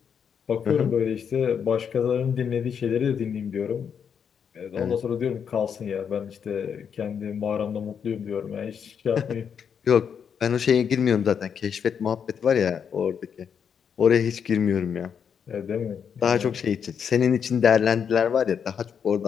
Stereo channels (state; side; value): quieter; right; 7.4 dB